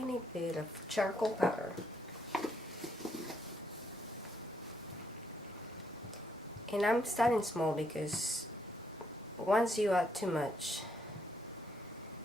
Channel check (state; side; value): normal; both; correlation 0.75